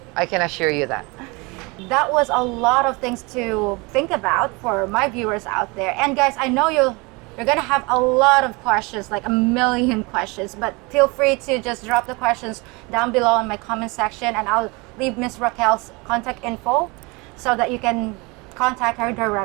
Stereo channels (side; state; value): left; quieter; 26.7 dB